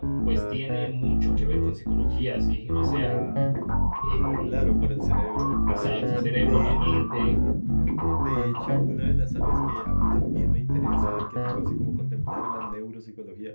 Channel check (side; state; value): both; inverted; correlation -1.00